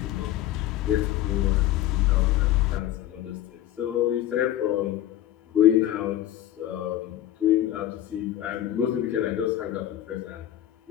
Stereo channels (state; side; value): quieter; right; 12.7 dB